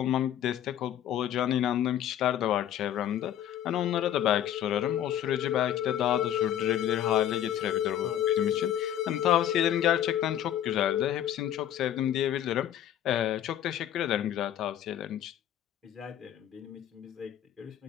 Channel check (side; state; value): right; quieter; 11.0 dB